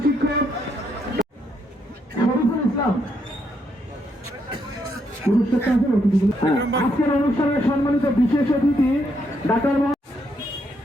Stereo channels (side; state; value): both; normal; correlation 0.76